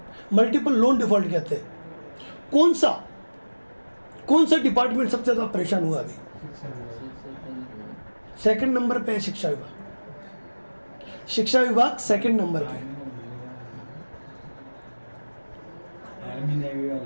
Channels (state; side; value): inverted; both; correlation -1.00